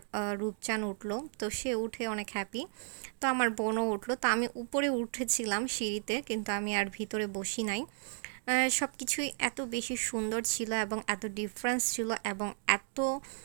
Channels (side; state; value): left; silent; digital silence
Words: রূপচান উঠলো। তো সে উঠে অনেক হ্যাপি, তো আমার বোনও উঠলো। তো আমি উপরে উঠেছিলাম সিঁড়িতে, কিন্তু আমি আর ভিতরে বসি নাই। সব কিছুই এত বেশি সুন্দর ছিল এবং এত ডিফারেন্স ছিল এবং এত